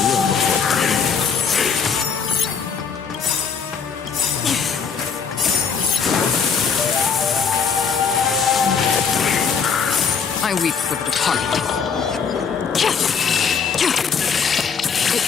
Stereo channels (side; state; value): right; quieter; 6.1 dB